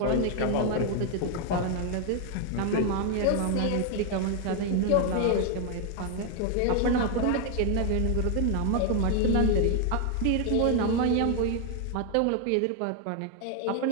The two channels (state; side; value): different; both; correlation 0.00